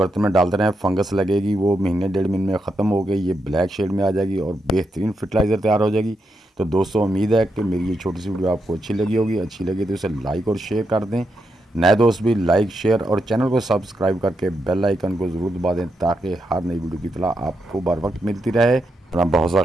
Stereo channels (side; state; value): both; normal; correlation 0.83